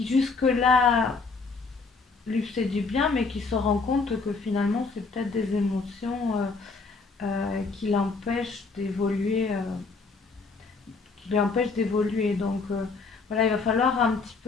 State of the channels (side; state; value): right; quieter; 4.2 dB